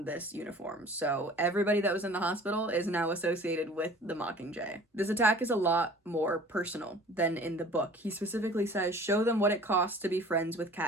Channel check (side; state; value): both; normal; correlation 0.47